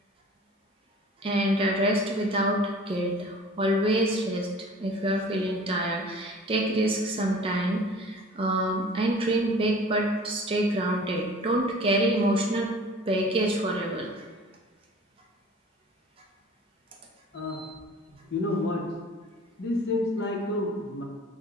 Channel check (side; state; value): both; normal; correlation 0.45